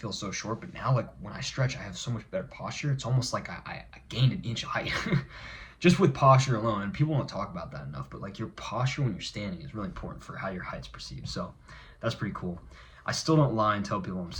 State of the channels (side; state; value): both; identical; correlation 1.00